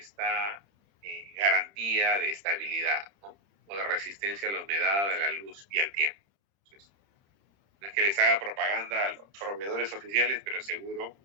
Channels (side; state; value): left; late; 30 ms